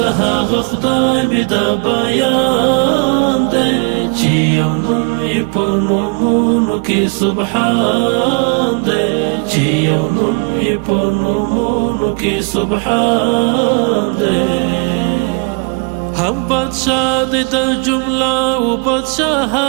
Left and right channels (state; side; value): quieter; left; 34.2 dB